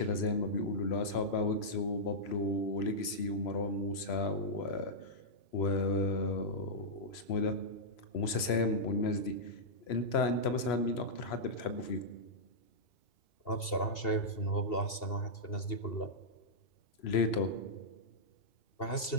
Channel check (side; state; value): right; late; 3.0 ms